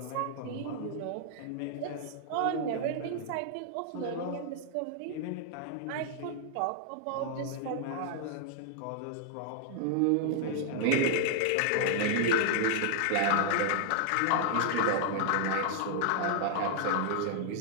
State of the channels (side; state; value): both; different; correlation 0.00